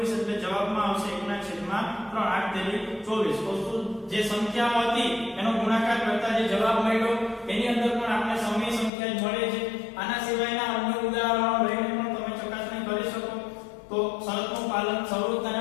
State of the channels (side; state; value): right; drops out; at 8.9 s